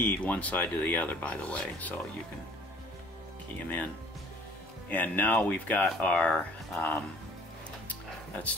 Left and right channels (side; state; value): both; normal; correlation 0.51